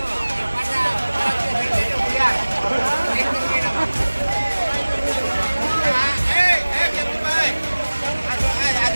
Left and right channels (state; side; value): inverted; both; correlation -1.00